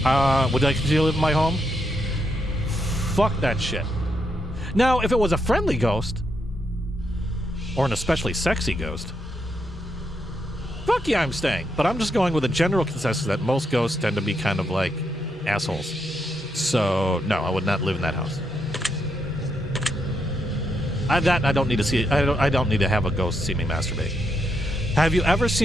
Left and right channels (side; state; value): both; normal; correlation 0.80